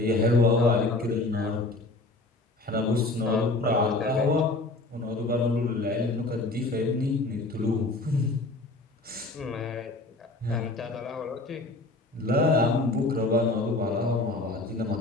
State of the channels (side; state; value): right; quieter; 3.1 dB